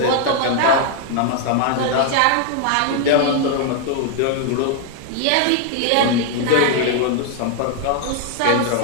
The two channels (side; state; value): both; different; correlation 0.00